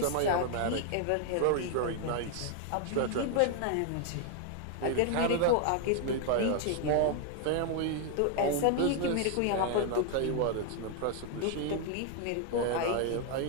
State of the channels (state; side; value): different; both; correlation 0.00